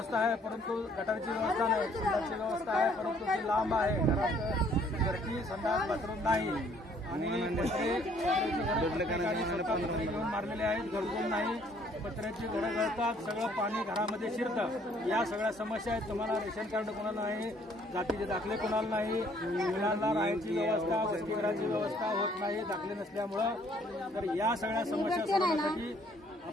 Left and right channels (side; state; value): both; normal; correlation 0.62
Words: आहे, परंतु गटारची व्यवस्था नाही. संडासची व्यवस्था आहे, परंतु ती लांब आहे. घरात घरची संडास बाथरूम नाही. आणि पत्रे घेऊन मारलेले आहेत, घरकुल नाही. पत्र्याची घरं गळतात, सगळं पाणी घरामध्ये शिरतं. या सगळ्या समस्या आहेत. तुम्हाला रेशन कार्ड कोणाला नाही, जातीचे दाखले कोणाला नाही, मुलांना राहायची व्यवस्था, वसतिगृहाची व्यवस्था होत नाही दाखले नसल्यामुळं. तर या सगळ्या समस्या सोडवण्यासाठी